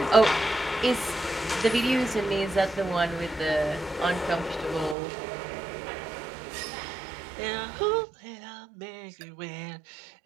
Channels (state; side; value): drops out; left; at 5.0 s